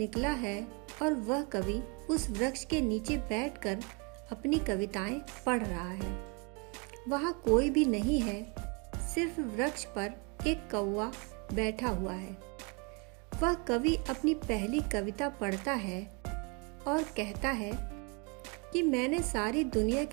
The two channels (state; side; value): quieter; left; 32.8 dB